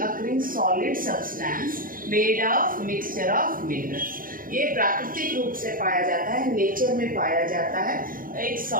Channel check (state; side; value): late; left; 0.41 ms